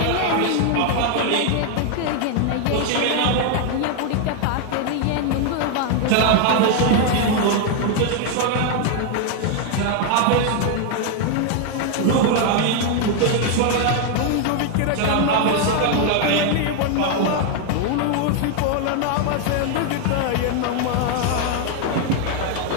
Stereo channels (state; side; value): different; both; correlation 0.00